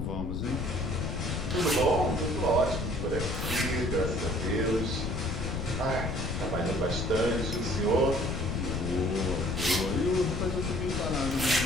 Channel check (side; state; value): left; noise; rumble, 4 dB below the sound